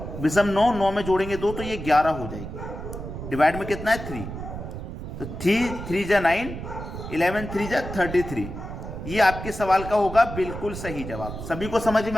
विषम 9 में जोड़ेंगे 2, तो ये 11 हो जाएगी। डिवाइड में कितना है 3, तो 3 जा 9, 11 3 जा 33। ये आपके सवाल का होगा बिल्कुल सही जवाब। सभी को समझ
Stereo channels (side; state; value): right; noise; rumble, 8 dB below the sound